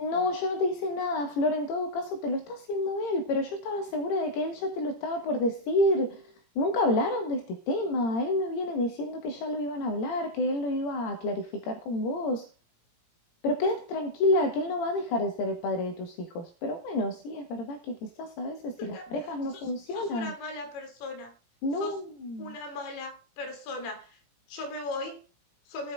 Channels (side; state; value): right; late; 17 ms